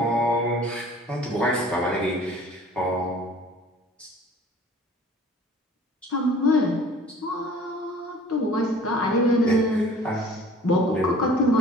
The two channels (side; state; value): both; normal; correlation 0.48